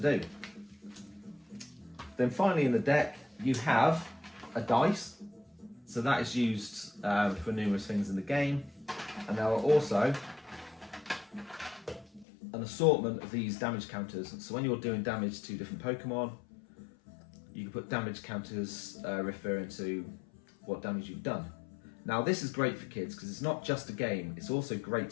Then finally in the deck, you have a dice. So that is used for numerous things in the game. And there are also an assortment of these damage counters. So when you're doing damage to different Pokemon, you can put damage counters referring to what damage you've done. Now this is great for kids because it's not just a game, it's also great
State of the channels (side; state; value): right; drops out; at 12.2 s